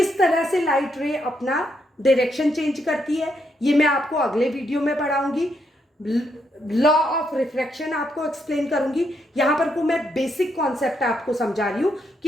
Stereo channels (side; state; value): both; normal; correlation 0.78